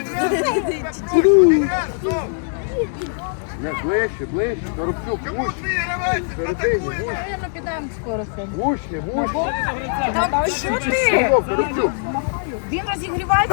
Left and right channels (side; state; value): right; silent; 65 dB below the other